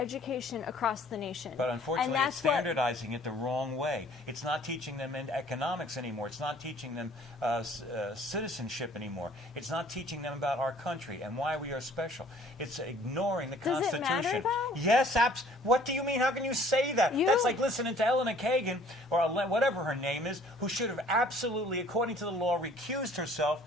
across the nation. But unfortunately, and it's that's what, standardizing it the wrong way. It's not teaching them in economics anymore. It's not teaching them citizenship anymore. It's not teaching them about our country and why we are special. It's ignoring the Does it Constitution. matter, though? Yes, what do you mean? How can you say that? That's like listening to Eleanor Kagan, or whatever her name is, who should have absolutely, according to the law, recused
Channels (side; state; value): both; normal; correlation 0.55